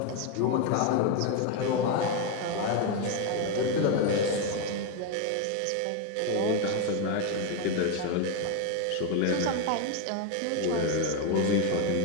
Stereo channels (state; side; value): different; both; correlation 0.02